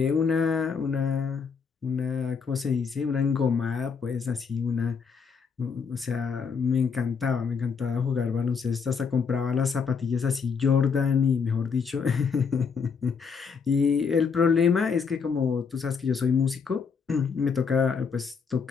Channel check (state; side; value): quieter; right; 5.8 dB